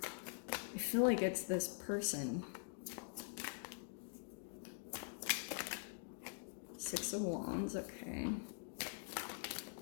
feel like it's this person. Six of Wands, okay.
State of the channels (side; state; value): right; silent; digital silence